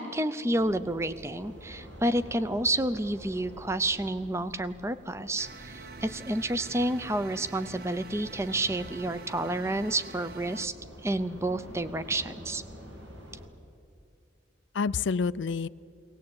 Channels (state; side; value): normal; both; correlation 0.45